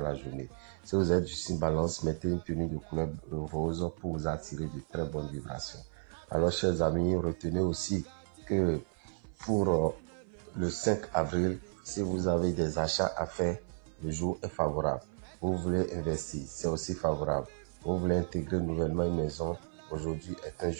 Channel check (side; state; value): left; silent; 55 dB below the other